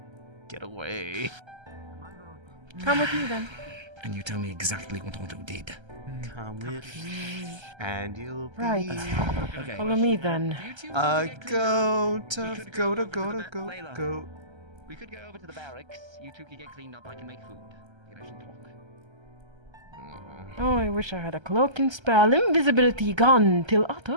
Get away. Come with me then. And you tell me exactly what Otto did. Come with me, and you'll be. Right. Okay. Follow me then. A goat of goat, a goat, a goat, Layla. goat. We could go over to the barracks. You two can get cleaned up. I can make food. You guys can talk. Oh, I wish I had a cloaking spell. Invisibility gone till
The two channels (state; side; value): late; left; 1.3 ms